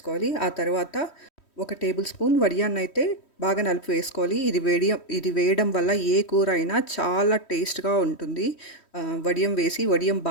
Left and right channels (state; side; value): late; right; 3.1 ms